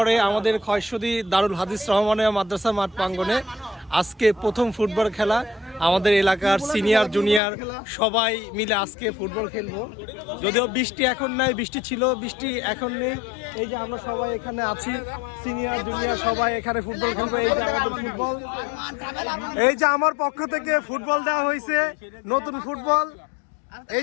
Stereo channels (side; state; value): right; drops out; at 7.4 s